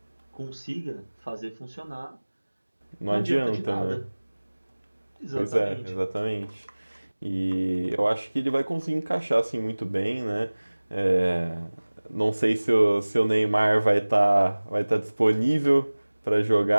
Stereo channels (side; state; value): both; inverted; correlation -1.00